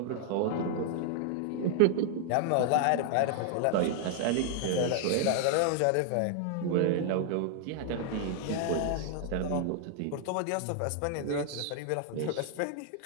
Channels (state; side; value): different; both; correlation 0.00